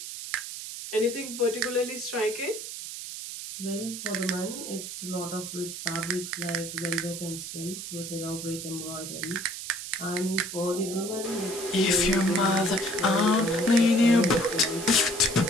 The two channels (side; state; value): right; noise; hiss, 8 dB below the sound